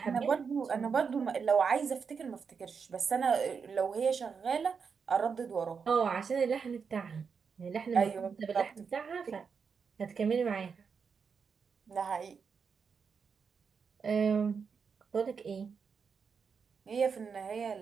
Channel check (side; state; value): left; quieter; 5.9 dB